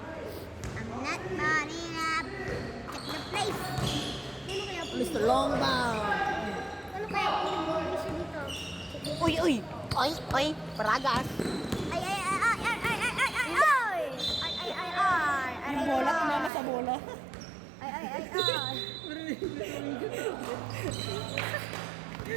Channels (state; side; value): drops out; left; at 16.5 s